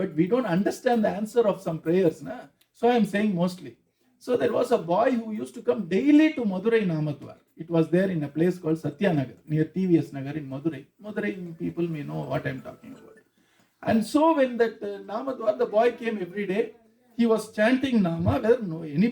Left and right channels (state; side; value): identical; both; correlation 1.00